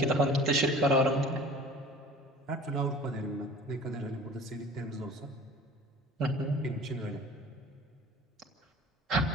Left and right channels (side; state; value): both; normal; correlation 0.44